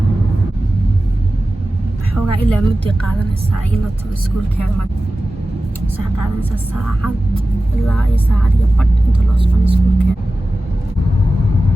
xogaa ilaa muddo qaadanaysa ila tago iskuulkeeda sax qaadanaysa saacad ilaa iyo saacad iyo badh inta loo socon iskuulkeeda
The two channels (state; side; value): normal; both; correlation 0.95